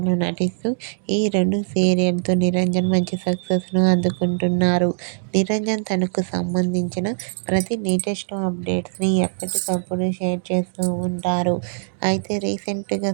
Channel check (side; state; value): left; silent; digital silence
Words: నటిస్తూ ఈ రెండు సీరియల్తో నిరంజన్ మంచి సక్సెస్ను అందుకుంటున్నారు. నిరంజన్ తనకు సంబంధించిన ప్రతి లేటెస్ట్ అప్డేట్స్ని ఎప్పటికప్పుడు షేర్ చేస్తూ ఉంటారు. అయితే రీసెంట్గా